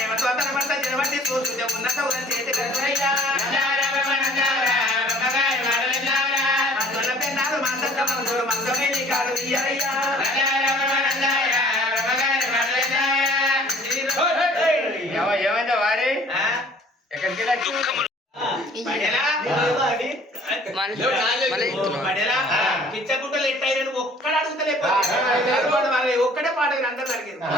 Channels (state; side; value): normal; both; correlation 0.53